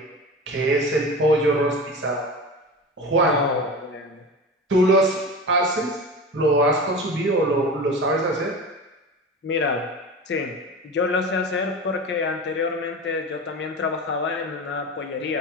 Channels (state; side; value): normal; both; correlation 0.30